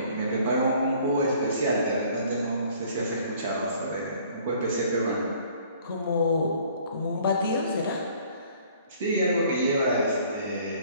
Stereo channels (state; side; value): inverted; both; correlation -0.56